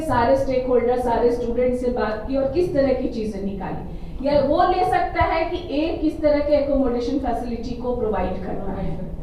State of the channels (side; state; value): both; identical; correlation 1.00